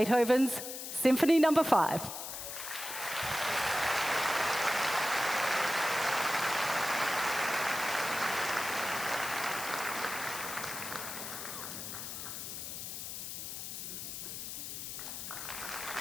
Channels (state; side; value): noise; left; hiss, 7 dB below the sound